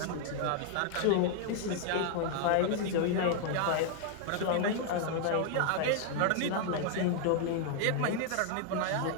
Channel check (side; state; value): both; different; correlation -0.01